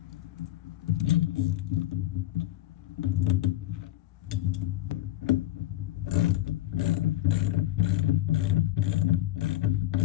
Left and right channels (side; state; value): right; quieter; 14.9 dB